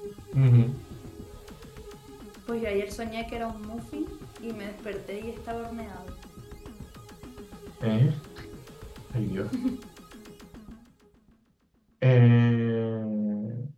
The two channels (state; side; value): identical; both; correlation 1.00